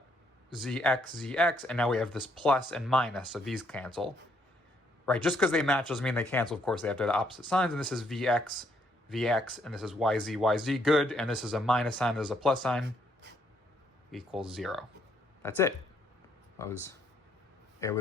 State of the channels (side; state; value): both; normal; correlation 0.71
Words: zx, and now we have this plus and minus, so these cancel. Right, just because they match doesn't mean they cancel. Of course, they have to have the opposite signs, and this is vx, and this is yz, good, and this is a minus sign, this is a plus sign, equals 0. That's it. I